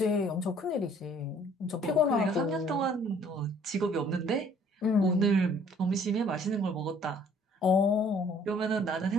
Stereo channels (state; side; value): normal; both; correlation 0.57